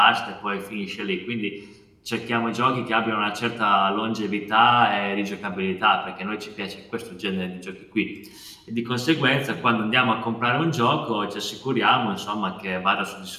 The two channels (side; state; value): both; identical; correlation 1.00